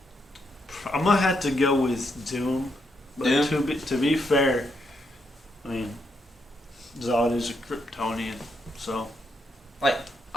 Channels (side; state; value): both; normal; correlation 0.79